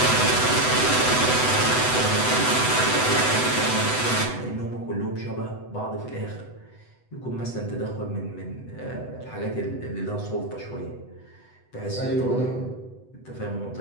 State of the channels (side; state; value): right; late; 8.0 ms